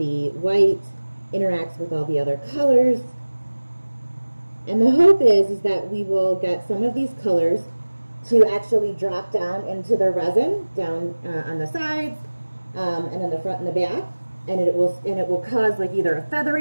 white interacts with all the other colors. And the hope is that we will get some of these colors to actually drop down into the resin, down on the sides, and in the front and the back. And it will cause like either a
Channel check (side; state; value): both; inverted; correlation -1.00